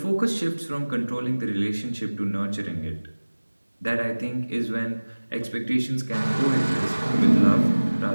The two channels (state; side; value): inverted; both; correlation -1.00